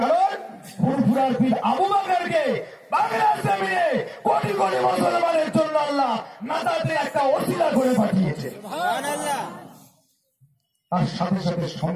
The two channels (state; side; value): identical; both; correlation 1.00